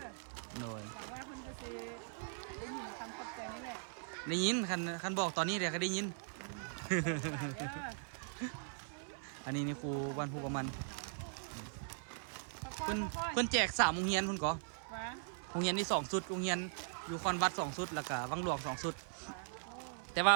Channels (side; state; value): left; silent; 51 dB below the other